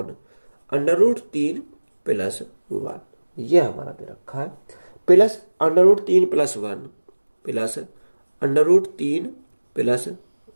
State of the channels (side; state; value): both; inverted; correlation -1.00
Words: under root 3 plus 1 ये हमारा दे रखा है, plus under root 3 plus 1 plus under root 3 plus